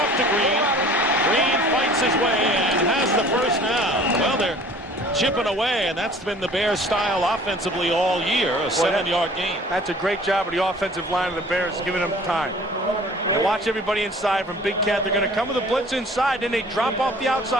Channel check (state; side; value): normal; both; correlation 0.49